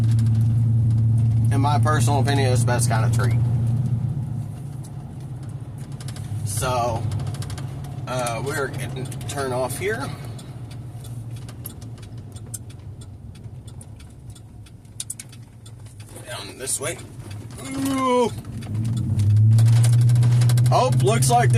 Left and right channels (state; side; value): identical; both; correlation 1.00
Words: In my personal opinion, it's the best kind of treat. So, we're getting to turn off here. Down this way. Ooh. Oh, looks like